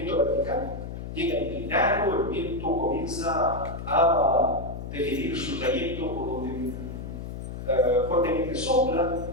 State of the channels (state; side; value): noise; left; hum, 8 dB below the sound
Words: vertical. llega inclinado, el viento comienza a definir su trayecto por donde fuertemente sopla,